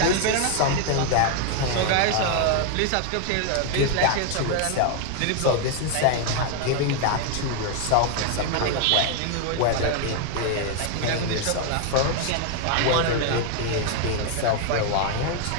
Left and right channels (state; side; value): different; both; correlation 0.01